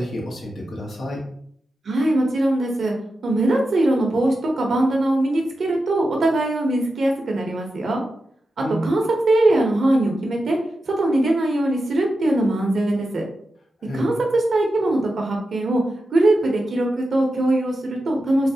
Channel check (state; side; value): normal; both; correlation 0.90